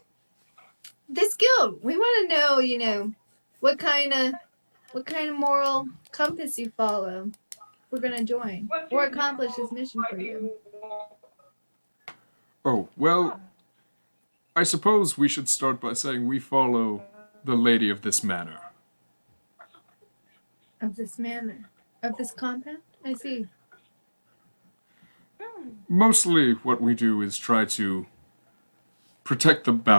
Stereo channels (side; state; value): both; inverted; correlation -1.00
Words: This guild, we want to know, what kind of moral compass you follow. We're gonna join or accomplish this mission for you. Oh, well, I suppose we should start by saying we follow the lady of this manor. Of this manor, of this compound. I see. Mostly what we do is try to protect the